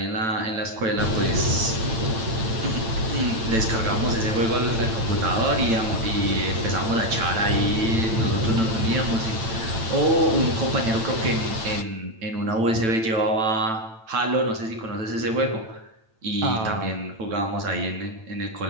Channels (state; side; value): late; left; 8.9 ms